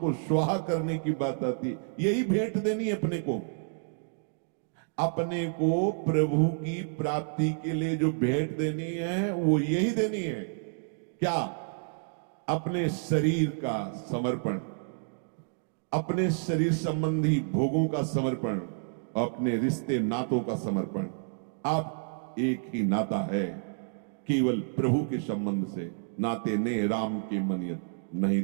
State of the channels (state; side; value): silent; left; digital silence